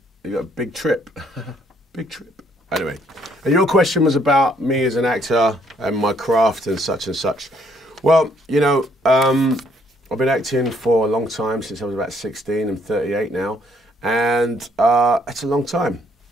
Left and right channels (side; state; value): both; normal; correlation 0.67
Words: you got a big trip, big trip. Anyway, and your question was about me as an actor and my craft and such and such. Well, you know, I've been acting for a long time, since I was about 16. I'm 38 now, and it's a long time.